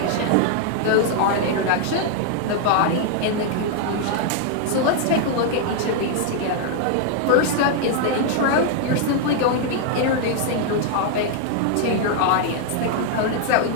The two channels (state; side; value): different; both; correlation 0.00